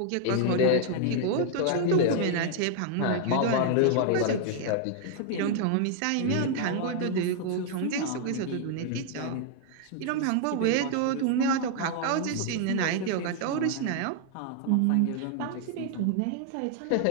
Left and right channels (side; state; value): both; different; correlation 0.00